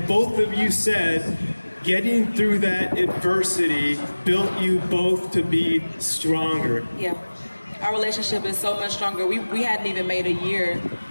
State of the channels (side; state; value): both; inverted; correlation -1.00